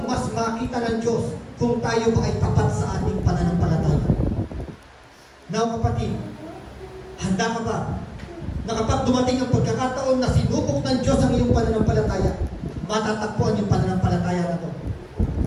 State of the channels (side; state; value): both; identical; correlation 1.00